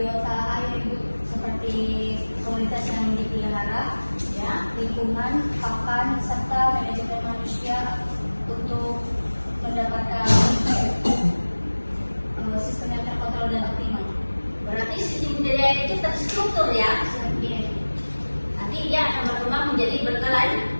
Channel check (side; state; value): both; inverted; correlation -1.00